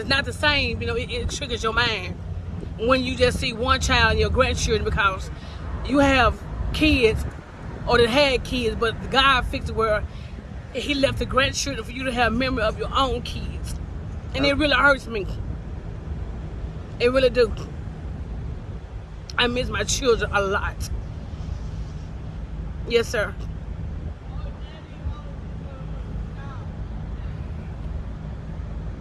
not the same, it triggers your mind. When you just see one child and your grandchildren, because you have kids or that had kids, but God fixed it where he left the grandchildren for you to have memory of your own kids. And it really hurts me. It really do. I miss my children a lot. Yes, sir.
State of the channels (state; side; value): identical; both; correlation 1.00